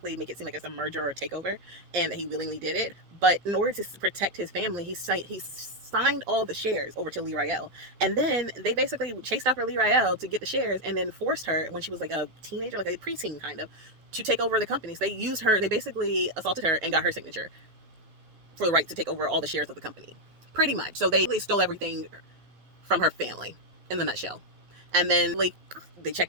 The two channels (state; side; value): late; left; 12 ms